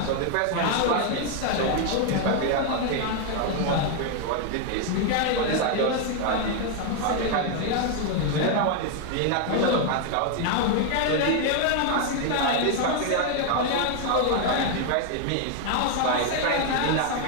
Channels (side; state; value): both; different; correlation 0.00